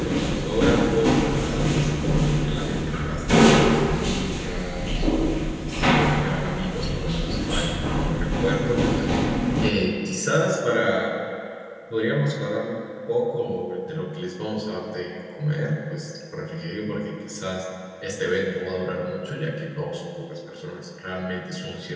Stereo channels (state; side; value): identical; both; correlation 1.00